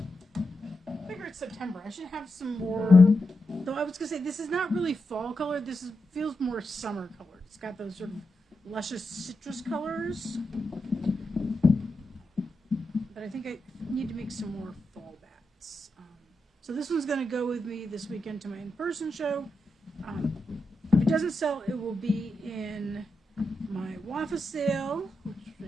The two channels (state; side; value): normal; both; correlation 0.87